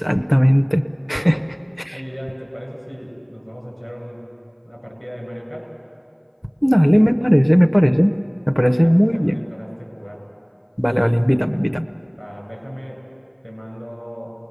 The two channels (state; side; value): identical; both; correlation 1.00